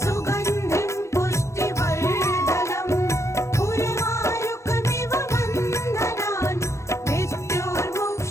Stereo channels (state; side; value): late; right; 0.14 ms